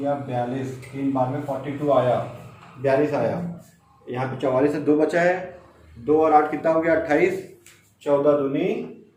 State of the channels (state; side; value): identical; both; correlation 1.00